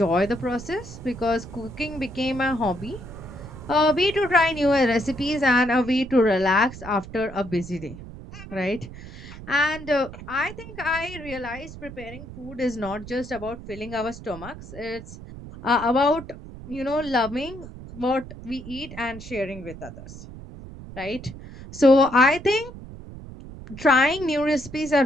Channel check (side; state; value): right; noise; rumble, 14 dB below the sound